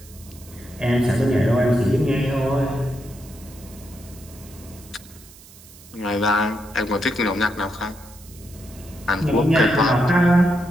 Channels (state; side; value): noise; right; hiss, 21 dB below the sound